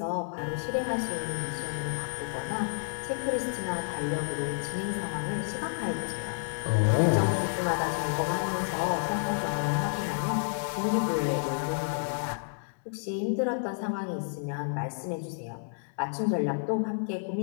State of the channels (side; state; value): right; silent; digital silence